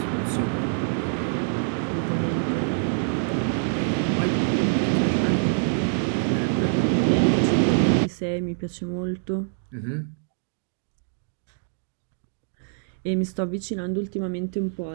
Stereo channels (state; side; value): silent; left; digital silence